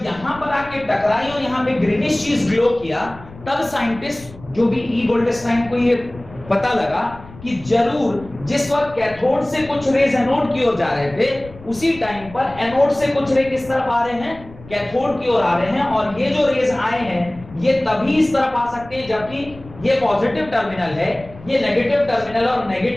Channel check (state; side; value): noise; left; rumble, 19 dB below the sound